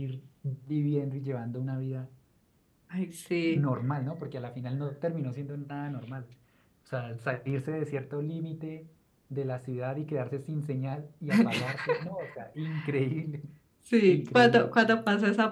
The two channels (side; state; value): both; identical; correlation 1.00